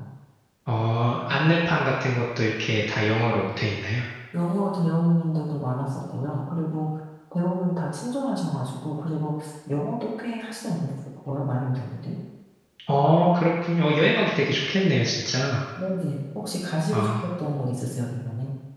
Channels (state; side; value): identical; both; correlation 1.00